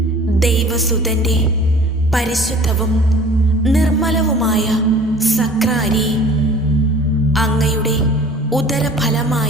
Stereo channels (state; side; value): normal; both; correlation 0.47